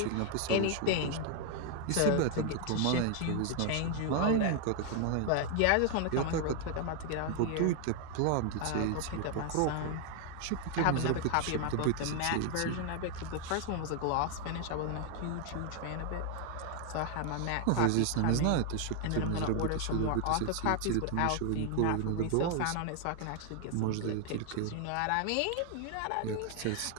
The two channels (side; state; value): both; different; correlation 0.00